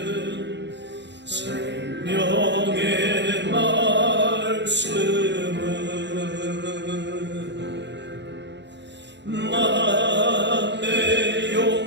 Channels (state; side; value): late; left; 0.52 ms